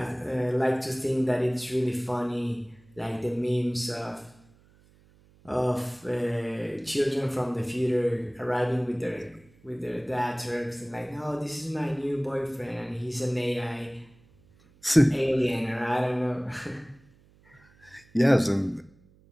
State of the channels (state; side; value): noise; right; hum, 29 dB below the sound